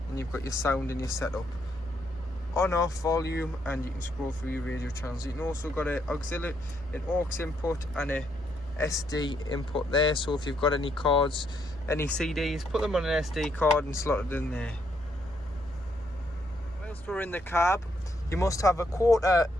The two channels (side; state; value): both; normal; correlation 0.74